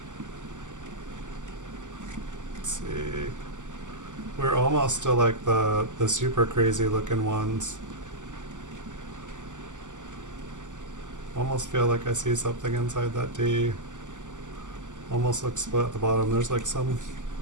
Let's see. We're almost to like the super crazy looking ones. Almost feel like I see something inside that D. Almost looks split at the bottom. There's like some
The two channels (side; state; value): left; late; 0.86 ms